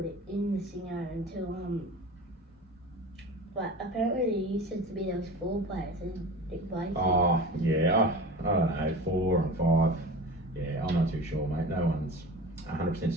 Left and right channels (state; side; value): normal; both; correlation 0.34